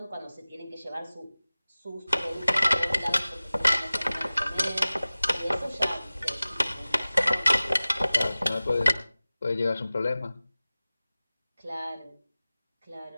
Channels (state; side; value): inverted; both; correlation -0.98